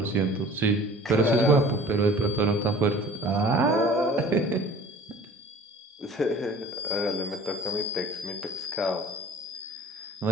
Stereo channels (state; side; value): normal; both; correlation 0.46